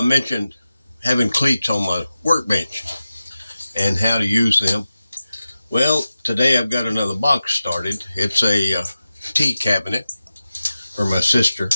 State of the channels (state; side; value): inverted; both; correlation -0.94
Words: mentioned having cleats on my workbench and how to use them. Well, today I've got another box started. It's a tea cabinet for my sister.